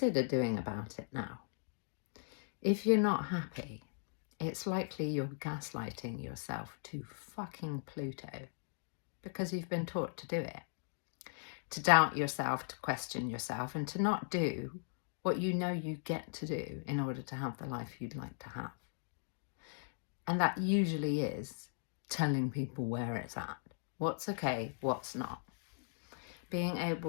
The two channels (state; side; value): silent; right; digital silence